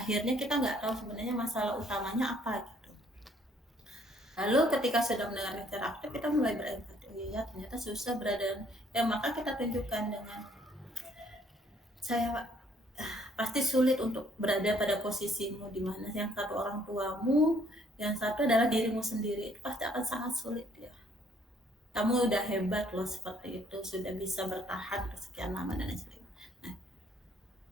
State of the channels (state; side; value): normal; both; correlation 0.64